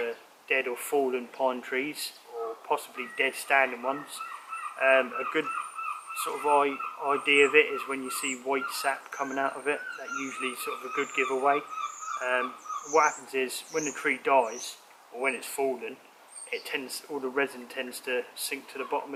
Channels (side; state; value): both; identical; correlation 1.00